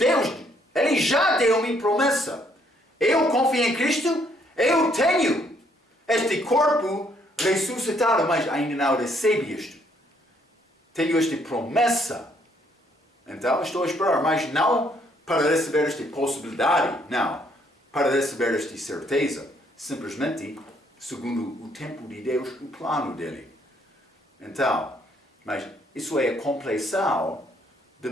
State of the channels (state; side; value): normal; both; correlation 0.68